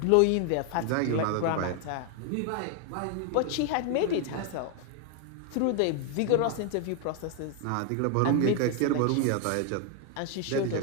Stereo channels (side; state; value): both; different; correlation 0.00